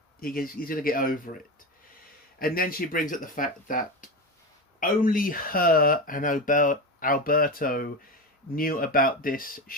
He's going to get over it. And then she brings up the fact that only her and Alberto knew about this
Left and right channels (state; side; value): normal; both; correlation 0.20